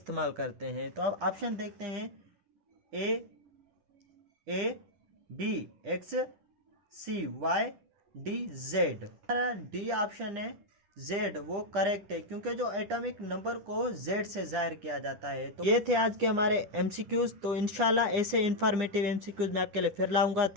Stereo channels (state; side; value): late; left; 9.9 ms